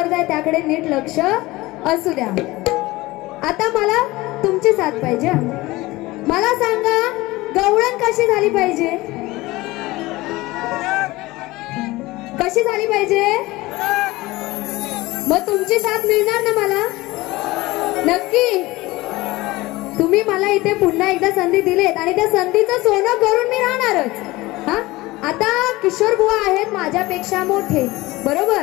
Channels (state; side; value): quieter; right; 19.9 dB